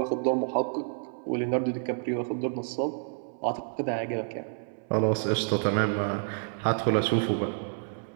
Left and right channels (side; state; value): left; silent; 59 dB below the other